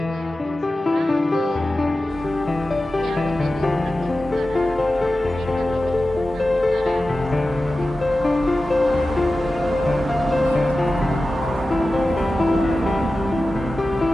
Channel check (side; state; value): both; normal; correlation 0.94